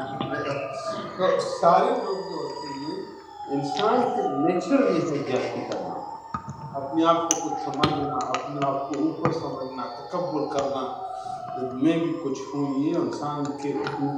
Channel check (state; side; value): identical; both; correlation 1.00